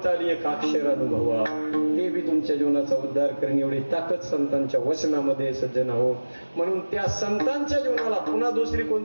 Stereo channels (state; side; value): inverted; both; correlation -1.00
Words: आली, एक अक्षर अनुभवा, ते बी तुमच्या जीवनाचा उद्धार करेन. एवढी ताकद संतांच्या वचनामध्ये सज्जन हो. म्हणून त्या संतांच्या जीवनाला पुन्हा दुसरी